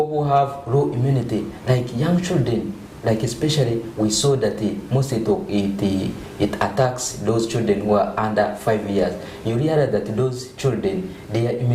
who have low immunity, like young children, like especially we saw that most it attacks those children who are under 5 years. You realize that those children, their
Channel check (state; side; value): identical; both; correlation 1.00